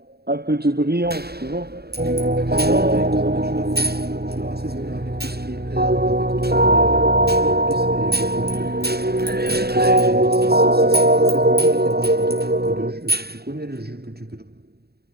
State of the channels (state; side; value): late; left; 0.46 ms